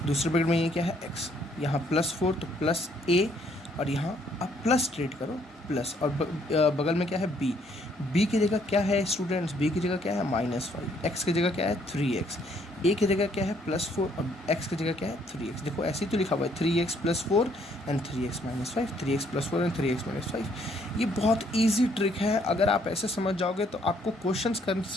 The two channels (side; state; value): both; normal; correlation 0.67